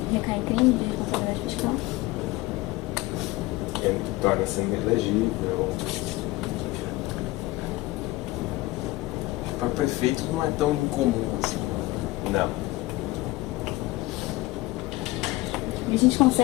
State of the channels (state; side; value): quieter; right; 19.8 dB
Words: Recai em crime de responsabilidade fiscal? Ele torna-se inelegível. Para prefeitos não é tão incomum assim. Não. E a gente